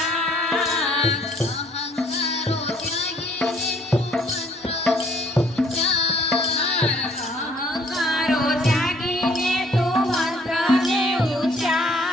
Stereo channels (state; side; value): normal; both; correlation 0.62